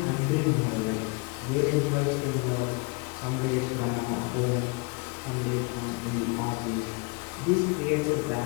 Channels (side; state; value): right; quieter; 30.3 dB